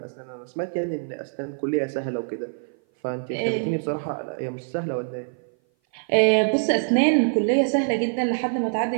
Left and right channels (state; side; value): silent; left; 57 dB below the other